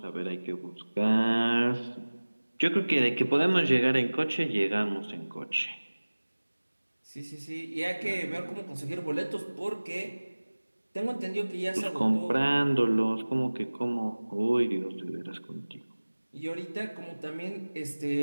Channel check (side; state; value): both; inverted; correlation -1.00